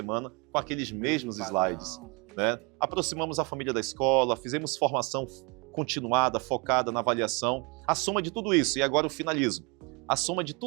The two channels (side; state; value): left; quieter; 30.1 dB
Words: com aqueles mesmos slides, né? Aproximamos a família da escola, fizemos formação continuada, focada na avaliação. A soma de tudo isso, e agora eu finalizo, a soma de